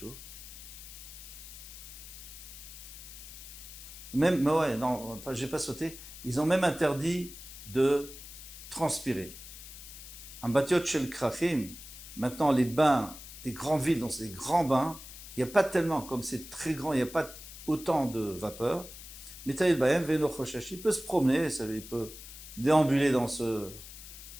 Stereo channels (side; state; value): left; noise; hiss, 14 dB below the sound